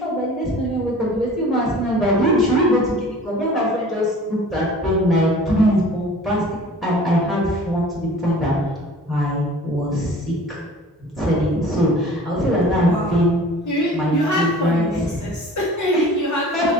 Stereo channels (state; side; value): normal; both; correlation 0.45